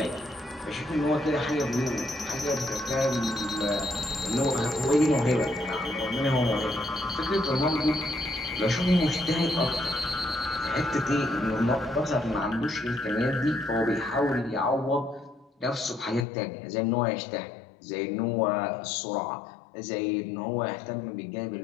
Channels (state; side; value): drops out; right; at 16.2 s